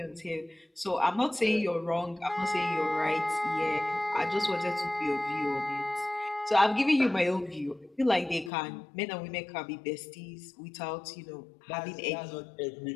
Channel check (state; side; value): drops out; right; at 8.5 s